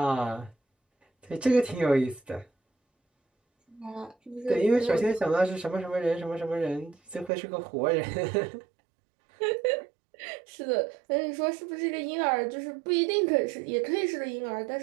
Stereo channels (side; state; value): left; drops out; at 7.3 s